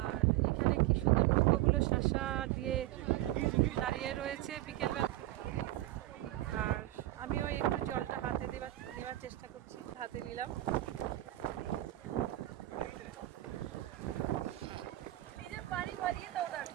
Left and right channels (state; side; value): quieter; left; 16.0 dB